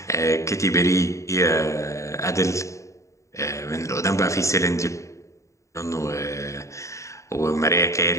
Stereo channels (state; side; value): late; right; 0.15 ms